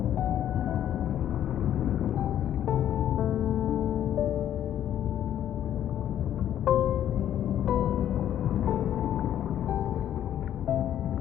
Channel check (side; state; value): right; quieter; 10.9 dB